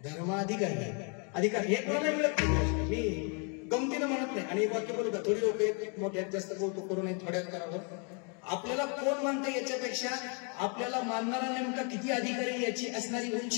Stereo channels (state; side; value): quieter; right; 37.2 dB